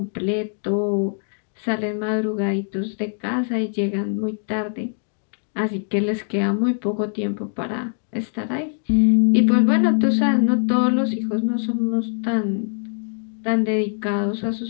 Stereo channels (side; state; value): right; silent; digital silence